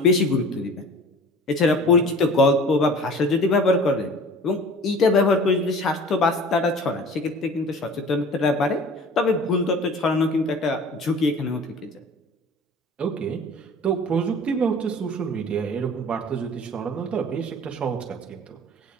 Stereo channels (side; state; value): both; normal; correlation 0.43